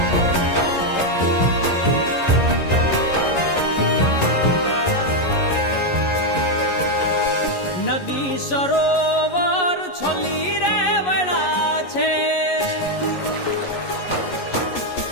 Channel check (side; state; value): right; late; 11 ms